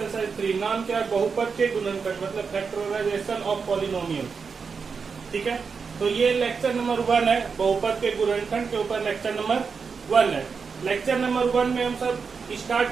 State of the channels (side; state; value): left; quieter; 5.5 dB